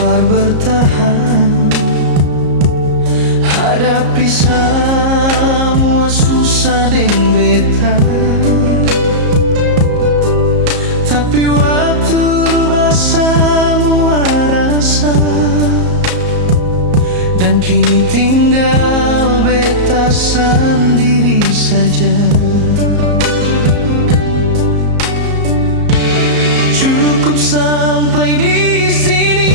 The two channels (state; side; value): late; left; 34 ms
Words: bertahan, hadapi semua susah deng beta. Tapi waktu rubah semua rasa, dan kini tinggal beta sendiri saja. Cukup sampai di sini,